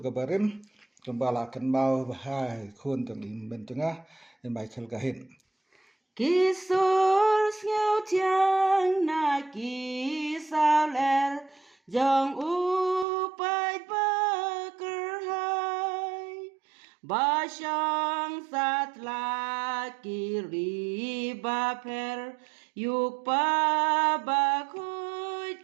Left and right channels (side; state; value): left; drops out; at 13.1 s